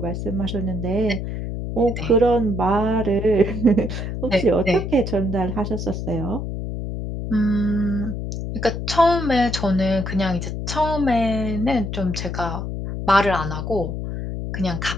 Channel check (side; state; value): left; noise; hum, 5 dB below the sound